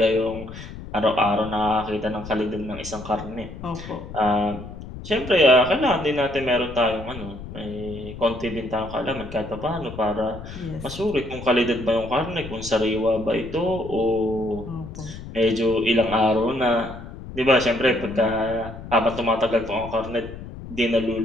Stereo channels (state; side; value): noise; left; rumble, 12 dB below the sound